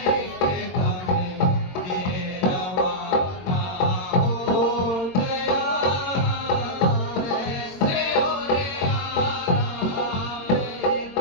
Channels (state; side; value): late; right; 22 ms